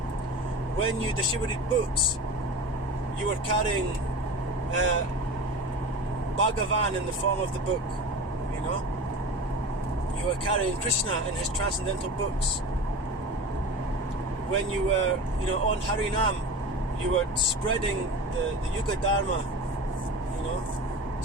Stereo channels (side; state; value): both; normal; correlation 0.32